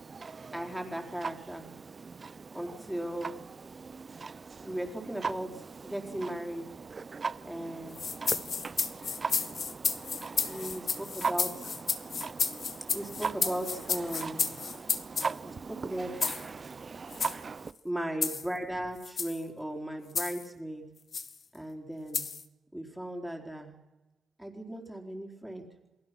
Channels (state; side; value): normal; both; correlation 0.87